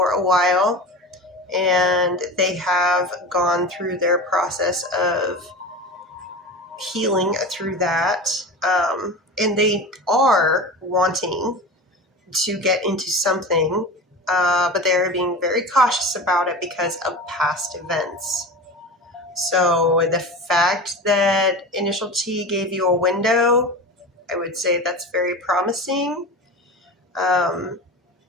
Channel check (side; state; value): both; normal; correlation 0.30